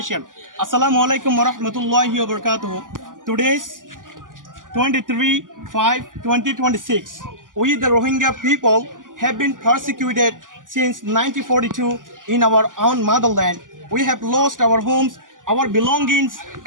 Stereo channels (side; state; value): left; late; 0.88 ms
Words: Assalamu alaikum wa rahmatullahi wa barakatuh. Today's 23/5/2026. We, the Rohingya people, have been persecuted since 1942 in our own motherland. We have lost our homes, our belongings,